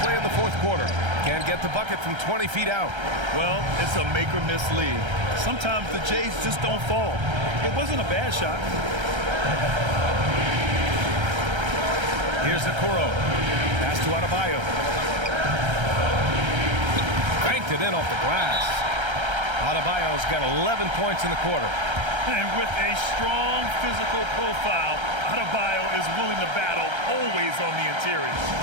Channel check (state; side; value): late; left; 1.3 ms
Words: in the fourth quarter. Can't get the bucket from 20 feet out. Well, it's a make or miss league. Sometimes the Jays just don't fall. It wasn't a bad shot. Here's Okoro. Pass to Adebayo. Banked it in off the glass. Adebayo's got 11 points in the quarter. And with a strong physical profile, Adebayo is willing to battle always on the interior.